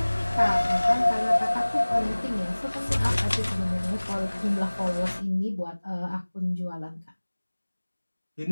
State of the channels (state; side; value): inverted; both; correlation -1.00